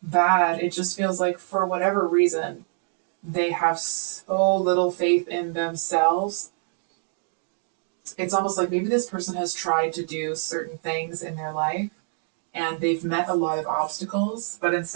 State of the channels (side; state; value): left; silent; digital silence